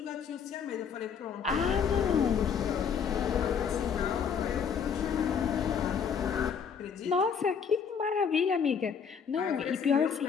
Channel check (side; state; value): right; quieter; 6.8 dB